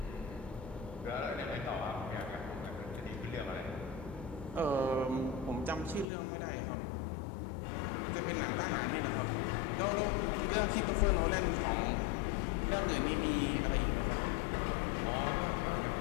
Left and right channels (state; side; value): drops out; right; at 6.1 s